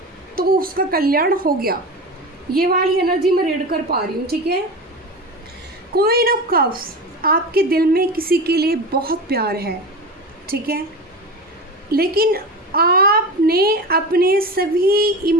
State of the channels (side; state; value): both; normal; correlation 0.27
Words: तो उसका कल्याण हो गया। ये वाली एनर्जी मैं रीड कर पा रही हूँ, ठीक है। क्वीन ऑफ कप्स, आपके दिल में किसी के लिए बहुत प्यार है, ठीक है, लेकिन आपने अपने सभी